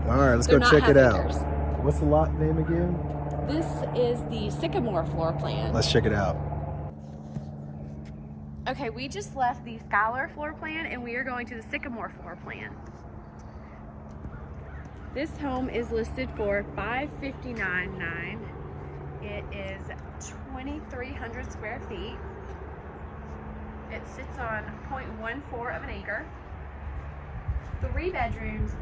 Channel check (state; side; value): identical; both; correlation 1.00